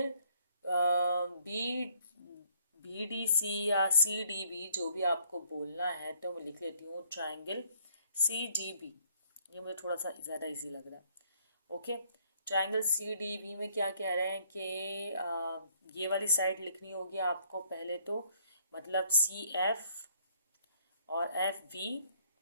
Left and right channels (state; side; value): inverted; both; correlation -0.65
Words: BDC या CDB, जो भी आपको बोलना है, तो मैं लिख लेती हूँ ट्रायंगल CDB। ये मुझे थोड़ा सा ज़्यादा इजी लग रहा है। ओके, ट्रायंगल CDB में क्या कह रहे हैं कि ये वाली साइड लिखनी होगी आपको पहले तो, मतलब CF और FV